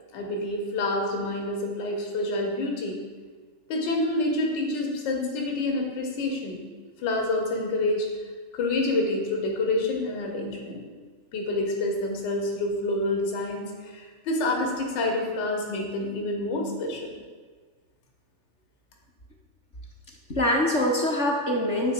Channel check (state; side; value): late; right; 3.4 ms